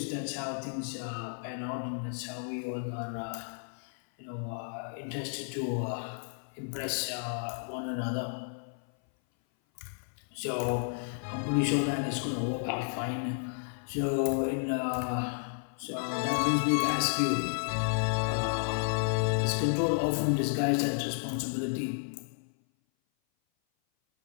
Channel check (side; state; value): right; silent; 56 dB below the other